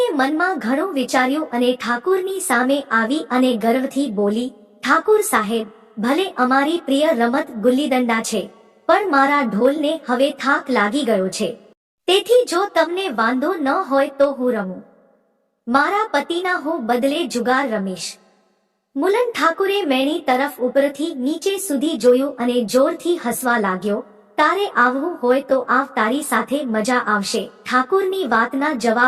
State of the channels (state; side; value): identical; both; correlation 1.00